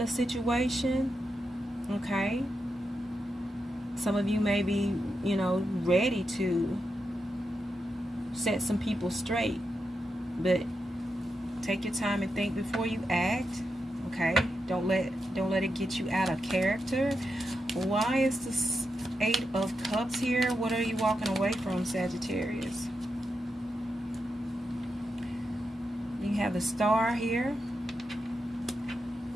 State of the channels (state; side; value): normal; both; correlation 0.87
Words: a situation. Okay, some of you may be, ready to set some people straight, but take your time and think before you act. Okay, don't let it get you out of character. Why is this Eight of Cups here? What are you walking away from, Sagittarius? You have the Star here,